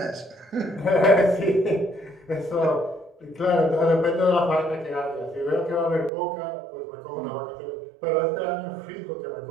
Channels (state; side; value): drops out; left; at 6.1 s